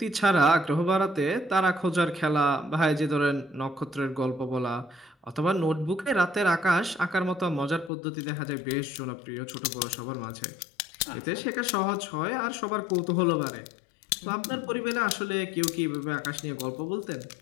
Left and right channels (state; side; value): drops out; right; at 7.9 s